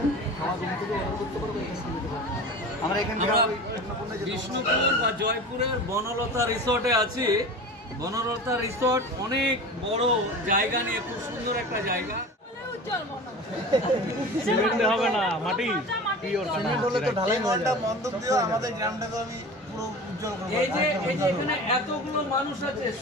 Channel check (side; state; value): both; normal; correlation 0.35